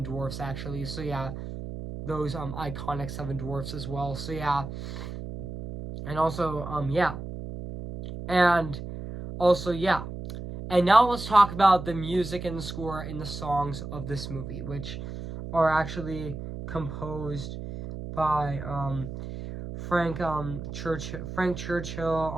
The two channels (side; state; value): right; noise; hum, 8 dB below the sound